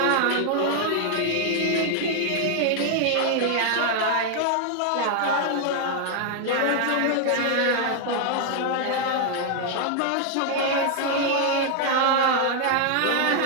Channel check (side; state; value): both; different; correlation 0.00